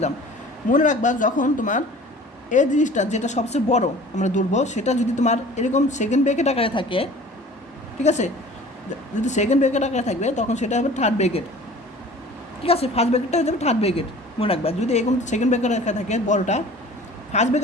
মনে রাখবা যখন তোমার এই জিনিসটা যেটা সবচেয়ে বড় আমরা ধরবো, সেটা যদি তোমার এরকম সেকেন্ড ব্র্যাকেট আকারে থাকে, ঠিক আছে, যদি সেকেন্ড ব্র্যাকেট আকারে থাকবে তখন সেটা হবে থার্ড ব্র্যাকেট। ঠিক আছে, ফার্স্ট ব্র্যাকেটটা হয়ে যাবে থার্ড ব্র্যাকেট। মনে রাখবা যদি এরকম সেকেন্ড ব্র্যাকেট আকারে থাকে বড়টা, ফার্স্ট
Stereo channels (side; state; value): both; normal; correlation 0.45